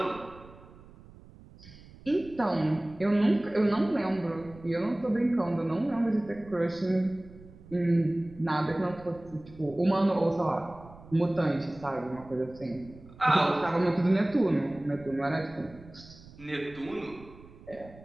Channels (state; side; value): noise; right; rumble, 21 dB below the sound